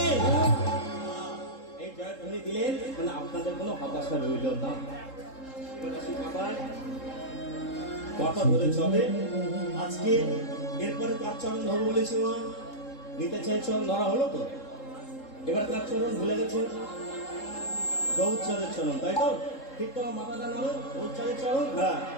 এই জয়ধ্বনি দিলেন মানে আপনাদের কোনো হতাশা রইল না। কথা ধরে চলে। আজকে এরপরে কার চরণ ধরবো বলেছি? মা নিতে চাই চরণ ধরা হলো তো, এবার কার চরণ ভুলে গেছে? গৌরচাঁদের চরণ, তাই তো? ঠিক তো, মাথাটা নামো, গৌরচাঁদের চরণ। হ্যাঁ,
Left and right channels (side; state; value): right; late; 3.7 ms